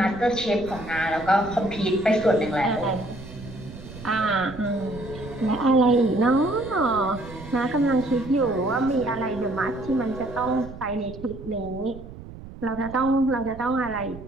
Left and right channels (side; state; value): right; noise; rumble, 14 dB below the sound